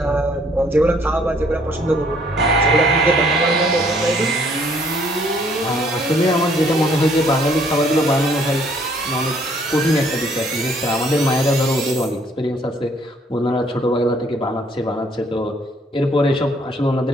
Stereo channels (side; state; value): both; normal; correlation 0.64